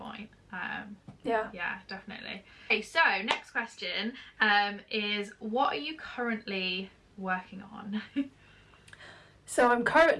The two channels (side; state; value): both; identical; correlation 1.00